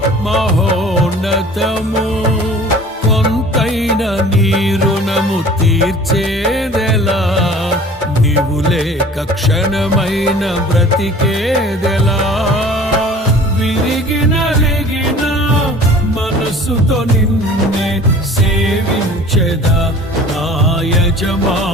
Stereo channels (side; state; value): both; normal; correlation 0.46